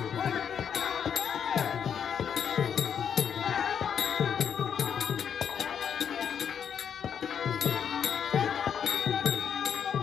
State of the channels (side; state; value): right; quieter; 7.9 dB